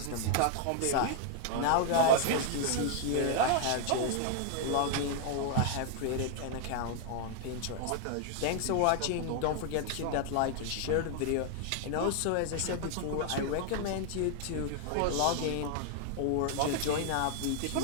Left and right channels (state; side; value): different; both; correlation 0.00